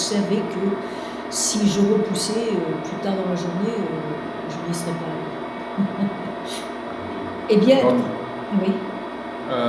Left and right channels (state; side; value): identical; both; correlation 1.00